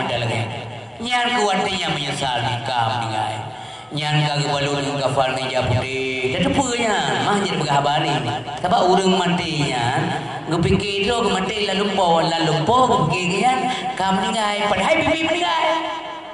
mana lagi? Nyan kuatnya menyesal ni kau meninggal. Nyan kaki balun kafal ni japudi. Dah tepurnya mahjid berhabari. Sebab urang matinya, ngepikir tu mati lalu po pikirkan kau meninggal. Padahal bibi meninggal.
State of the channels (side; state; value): both; identical; correlation 1.00